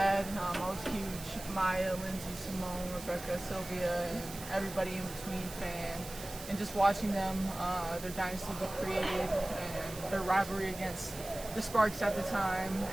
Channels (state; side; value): noise; right; hiss, 13 dB below the sound